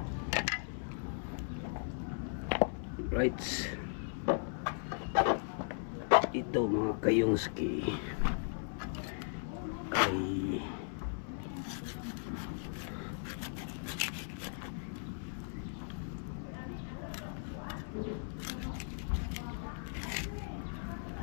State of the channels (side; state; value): right; silent; 53 dB below the other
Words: right. Ito mga kayonski ay